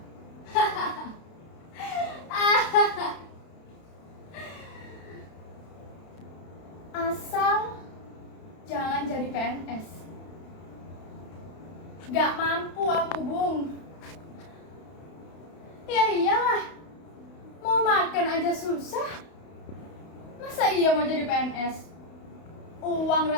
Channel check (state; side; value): late; right; 32 ms